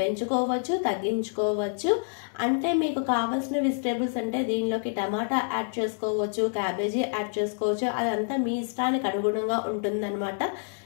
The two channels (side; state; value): right; silent; digital silence